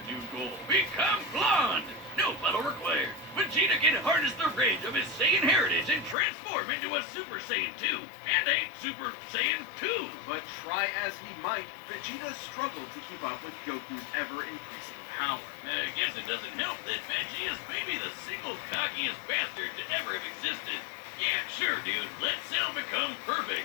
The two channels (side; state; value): right; drops out; at 6.2 s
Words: new goal. Become blonde! No battle required. Vegeta can harness the rage of his Saiyan heritage and transform into a Super Saiyan 2. And a Super Saiyan 2. But try as he might, Vegeta struggled to keep up with Goku's ever-increasing power. I guess it doesn't help that Veggie is maybe the single cockiest bastard to ever have existed. Yeah, sure, dude. Let Cell become